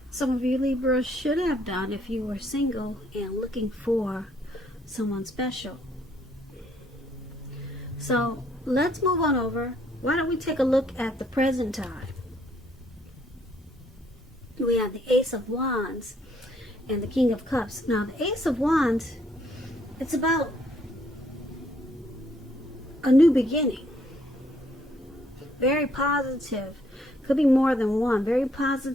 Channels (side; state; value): both; normal; correlation 0.68